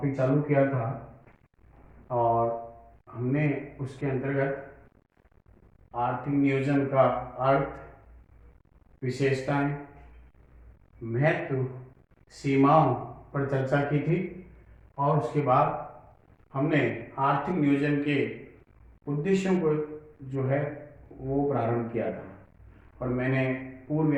चालू किया था और हमने उसके अंतर्गत आर्थिक नियोजन का अर्थ, विशेषताएं, महत्व, सीमाओं पर चर्चा की थी और उसके बाद हमने आर्थिक नियोजन के उद्देश्यों को जो है वो प्रारंभ किया था और मैंने पूर्व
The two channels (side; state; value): both; identical; correlation 1.00